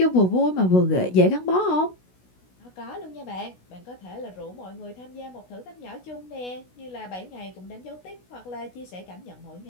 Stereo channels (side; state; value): right; late; 16 ms